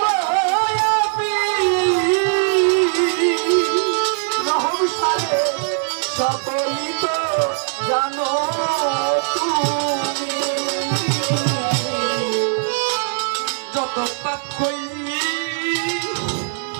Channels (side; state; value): left; silent; digital silence